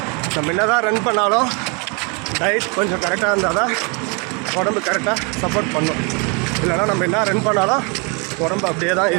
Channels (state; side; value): quieter; left; 33.1 dB